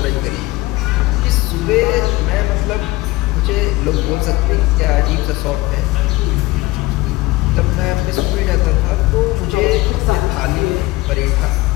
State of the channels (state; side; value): quieter; right; 20.0 dB